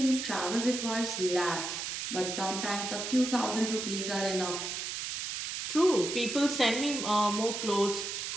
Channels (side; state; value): right; noise; hiss, 4 dB below the sound